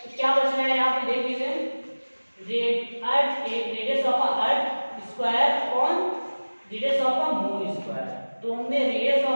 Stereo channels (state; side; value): inverted; both; correlation -1.00